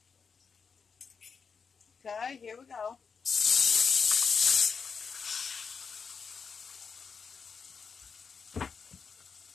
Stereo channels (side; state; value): right; quieter; 5.7 dB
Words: Okay, here we go.